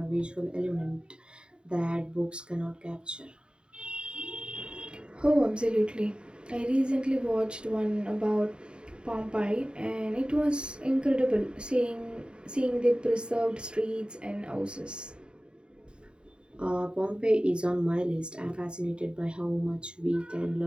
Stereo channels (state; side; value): late; left; 0.051 ms